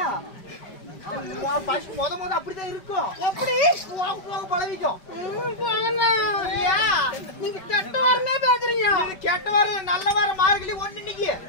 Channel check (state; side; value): late; right; 5.1 ms